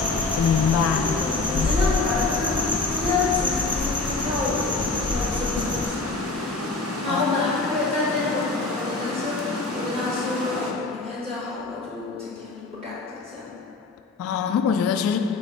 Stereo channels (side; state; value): right; quieter; 3.6 dB